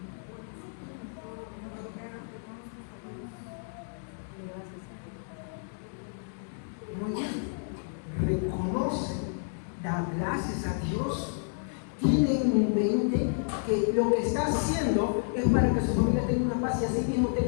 Muy bien. Reconoce, da gracias a Dios, tiene en mente que lo que está haciendo es para que su familia tenga una paz y así mismo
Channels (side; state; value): right; silent; digital silence